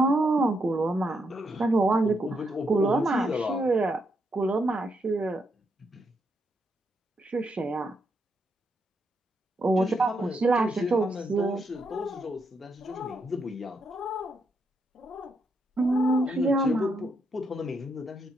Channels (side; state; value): both; normal; correlation 0.79